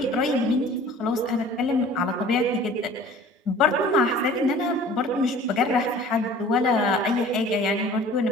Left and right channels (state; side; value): normal; both; correlation 0.47